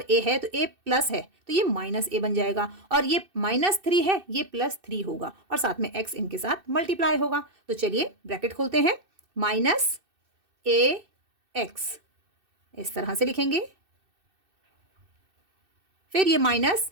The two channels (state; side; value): late; left; 2.6 ms